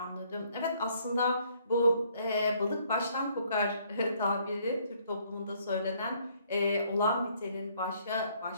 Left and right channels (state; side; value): inverted; both; correlation -0.66